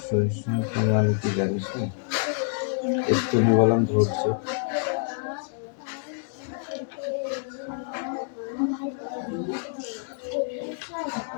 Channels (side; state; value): right; silent; digital silence